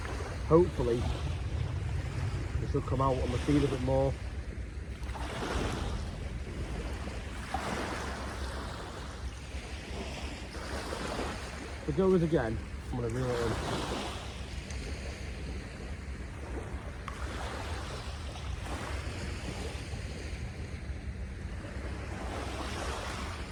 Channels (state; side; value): identical; both; correlation 1.00